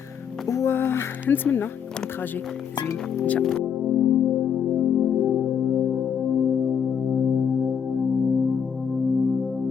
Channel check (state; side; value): quieter; right; 7.5 dB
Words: ونتمنى يكون تراجي زوين ان شاء الله.